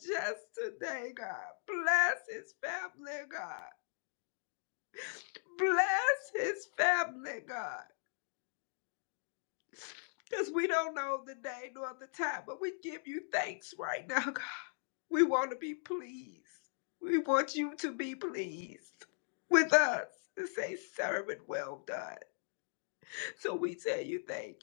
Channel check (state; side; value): silent; right; digital silence